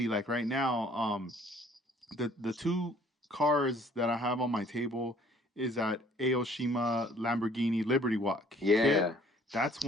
like right now, the two cars that I have on my table is that Aoshima Lamborghini Liberty Walk kit. Yeah. That's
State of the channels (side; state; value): both; normal; correlation 0.57